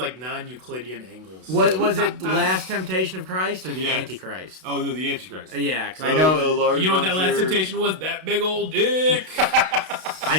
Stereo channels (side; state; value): left; late; 32 ms